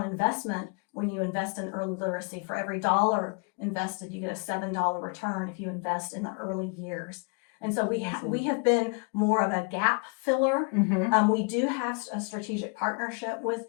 investment. When you invest in early literacy, for every $1 invested, you get a $7 return if you invest in the early years. And so we have been more of a gap filler. We do have a strategic partnership with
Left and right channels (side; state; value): right; quieter; 35.1 dB